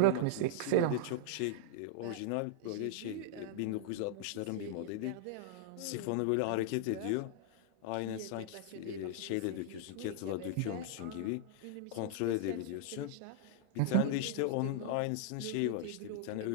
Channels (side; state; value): both; different; correlation -0.01